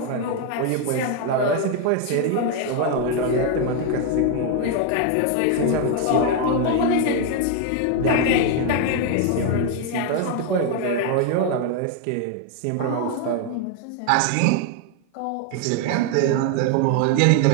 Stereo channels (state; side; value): different; both; correlation 0.01